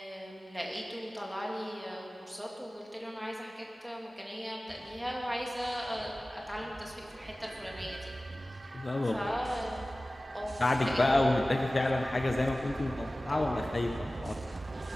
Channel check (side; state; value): both; normal; correlation 0.97